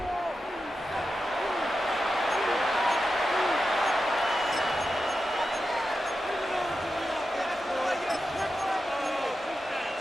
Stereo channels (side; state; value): both; normal; correlation 0.90